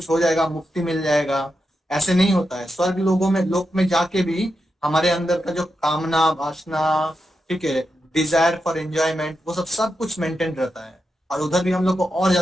हो जाएगा, मुक्ति मिल जाएगा। ऐसे नहीं होता है। स्वर्ग लोगों में, लोक में जाके भी हमारे अंदर का जो कामना, वासना, ठीक है, डिजायर फॉर एंजॉयमेंट, वो सब सब कुछ मेंटेन रहता है। और उधर भी हम लोग को और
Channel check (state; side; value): normal; both; correlation 0.87